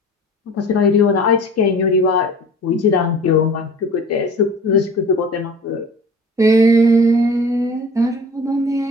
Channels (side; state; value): both; normal; correlation 0.42